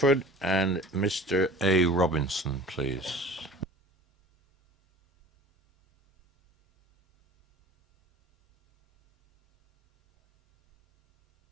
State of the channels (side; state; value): both; normal; correlation 0.41